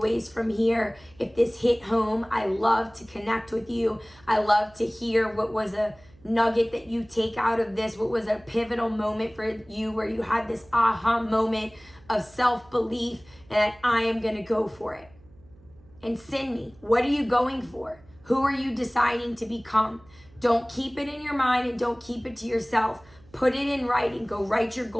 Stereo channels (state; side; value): noise; right; hum, 26 dB below the sound